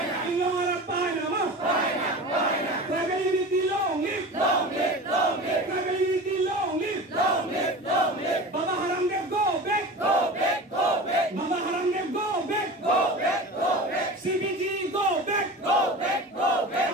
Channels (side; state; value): both; normal; correlation 0.32